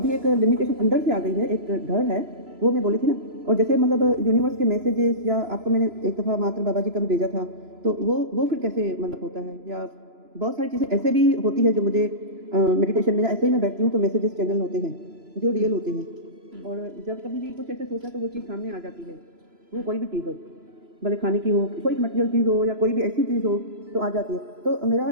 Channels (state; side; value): late; left; 3.0 ms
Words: एक लिमिटेशन अंदर से आ गई है, एक डर है, वो मैं बोली थी ना। और जैसे मतलब यूनिवर्स के मैसेजेस या आपको मैंने एक दफ़ा मात्र बाबा जी का भी भेजा था, तो वो फिर कैसे मतलब होता है? या बहुत सारी चीज़ें ऐसे भी होती है जो मुझे मेडिटेशन में ऐसे ही मैं बैठती हूँ तो मैसेजेस चैनल होते हैं जो रियल होते हैं, और जब कभी भी कुछ ऐसे सोचा तो वो चीज़ सामने आ जाती है, वो कोई भी चीज़ हो, भले खाने की हो, कोई मटेरियल चीज़ हो या कोई भी ऐसी चीज़ हो तो आ जाती है। तो मेरा